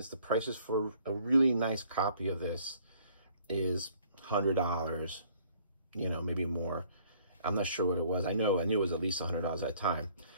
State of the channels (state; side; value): inverted; both; correlation -0.59